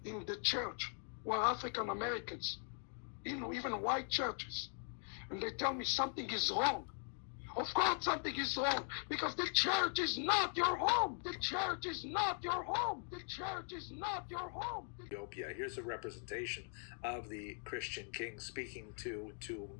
in the church who are African Americans, even white churches, and they tell me something is wrong. Of course something is wrong, because the church is not your home. The church is not your home. The church is not your home. Ethiopia. Here's a representation of the Christian king speaking to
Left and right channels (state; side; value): silent; right; 51 dB below the other